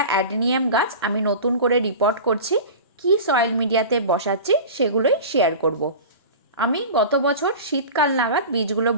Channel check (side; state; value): both; inverted; correlation -0.33